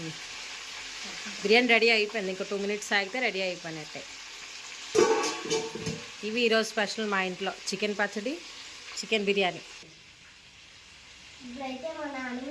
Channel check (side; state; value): both; identical; correlation 1.00